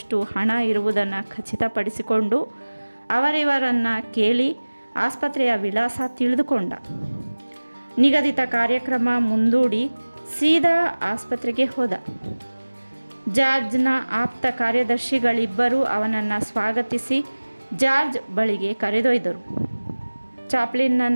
ಹಣ ಇರುವುದನ್ನು ಖಚಿತಪಡಿಸಿಕೊಂಡು ಅವರಿವರನ್ನು ಕೇಳಿ ಆಸ್ಪತ್ರೆಯ ವಿಳಾಸ ತಿಳಿದುಕೊಂಡ. ನಿಗದಿತ ಕಾರ್ಯಕ್ರಮ ಮುಂದೂಡಿ ಸೀದಾ ಆಸ್ಪತ್ರೆಗೆ ಹೋದ. ಜಾರ್ಜ್ನ ಆಪ್ತ ಕಾರ್ಯದರ್ಶಿಗಳಿಬ್ಬರೂ ಅವನನ್ನು ಸ್ವಾಗತಿಸಿ ಜಾರ್ಜ್ ಬಳಿಗೆ ಕರೆದೊಯ್ದರು.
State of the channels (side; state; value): both; inverted; correlation -1.00